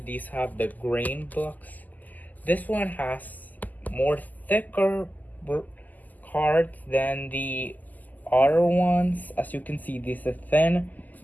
these have the grain blocks, this one has more thicker cards than the other ones. As you can see, this is thin,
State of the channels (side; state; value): right; late; 0.082 ms